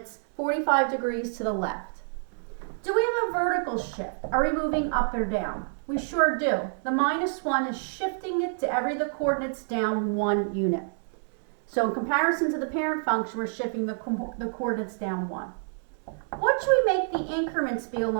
45 degrees to the left. Do we have a vertical shift? Are we moving up or down? We sure do. The minus 1 is shifting it to every the coordinates down 1 unit. So in comparison to the parent function, we're shifting the coordinates down 1. What should we make the increments be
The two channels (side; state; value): left; silent; digital silence